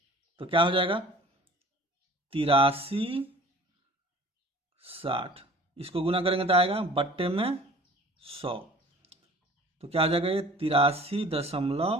तो क्या हो जाएगा 83/60। इसको गुना करेंगे तो आएगा बट्टे में 100, तो क्या हो जाएगा ये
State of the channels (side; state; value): both; normal; correlation 0.47